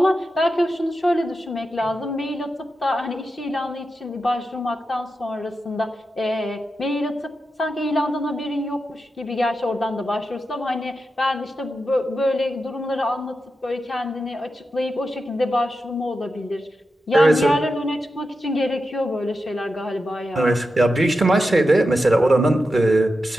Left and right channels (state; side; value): normal; both; correlation 0.89